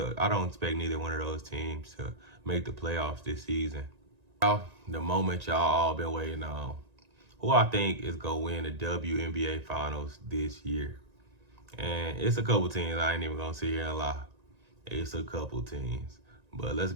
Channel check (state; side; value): late; left; 1.9 ms